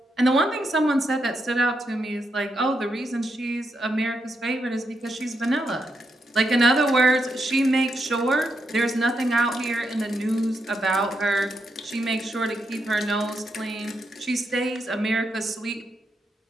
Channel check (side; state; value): both; normal; correlation 0.82